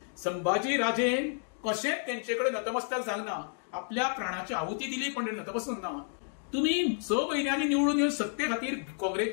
संभाजी राजेन कशेंच तेंचे कडेन नतमस्तक जावना. आपल्या प्राणाची आहुती दिली पण नतमस्तक ना. तुम्ही 6 म्हयन्यांनी निवडून येवन सत्ते खातीर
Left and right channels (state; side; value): silent; right; 57 dB below the other